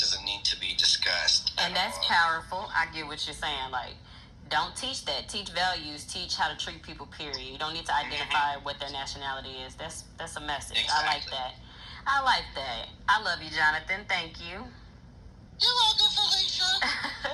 need to be discussed. And that's powerful. I get what you're saying. Like, don't teach that. Teach values. Teach how to treat people, period. You don't need to identify what their nationality is. That's a message. Exactly. I like that. I like that. I love you, Jonathan. Thank you. You're welcome, Felicia.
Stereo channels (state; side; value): identical; both; correlation 1.00